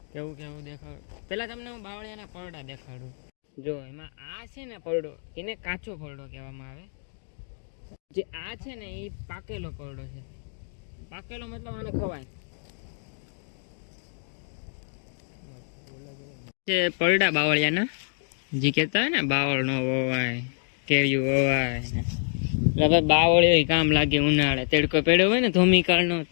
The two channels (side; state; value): right; silent; 60 dB below the other